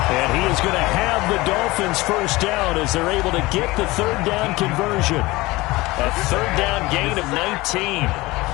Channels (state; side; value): quieter; right; 20.8 dB